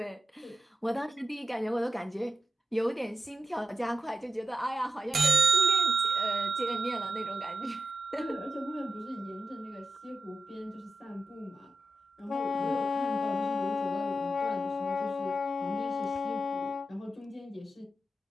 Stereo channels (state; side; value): normal; both; correlation 0.90